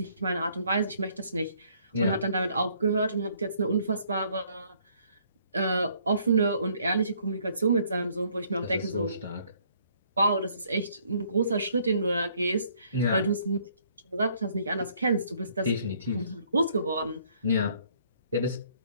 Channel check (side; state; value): both; inverted; correlation -0.64